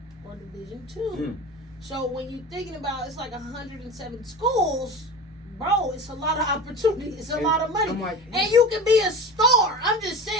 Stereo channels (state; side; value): normal; both; correlation 0.32